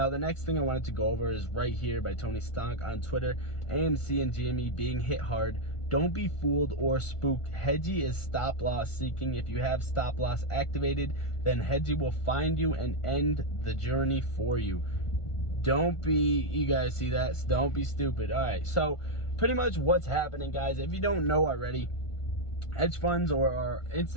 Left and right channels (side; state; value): right; late; 1.5 ms